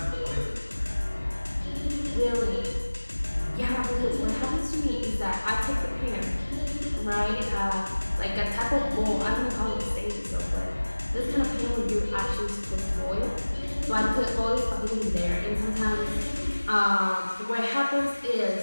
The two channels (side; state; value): both; inverted; correlation -1.00